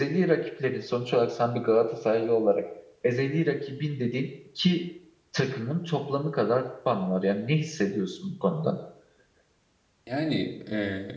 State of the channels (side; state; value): both; identical; correlation 1.00